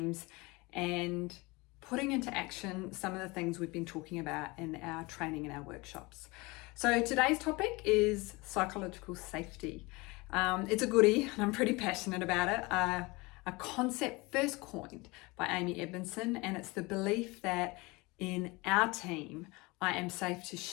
and putting into action some of the things we've been talking about in our training and our workshops. So today's topic is psychological safety. It's a goodie and I'm pretty passionate about it. A concept first coined by Amy Edmondson, and it's the belief that in our team, I am safe to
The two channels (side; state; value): right; quieter; 24.4 dB